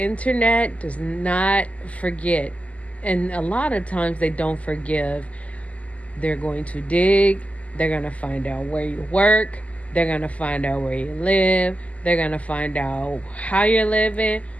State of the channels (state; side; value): late; right; 0.068 ms